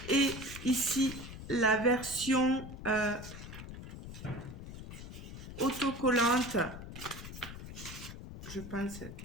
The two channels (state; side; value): noise; left; rumble, 11 dB below the sound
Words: Et ici, la version autocollante. Je pense